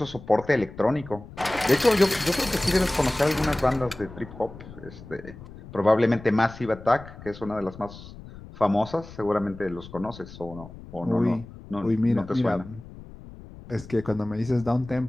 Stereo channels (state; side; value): noise; left; rumble, 16 dB below the sound